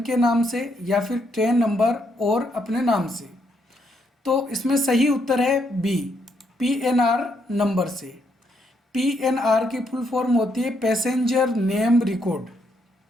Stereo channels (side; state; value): both; normal; correlation 0.75